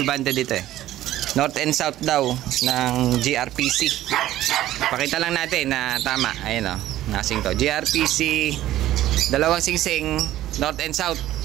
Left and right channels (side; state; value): left; quieter; 14.1 dB